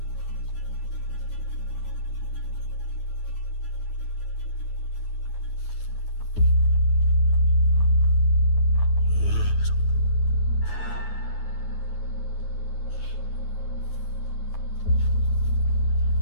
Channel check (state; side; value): late; right; 9.5 ms